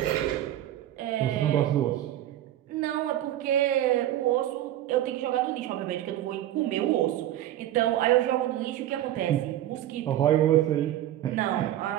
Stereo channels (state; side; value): quieter; left; 13.0 dB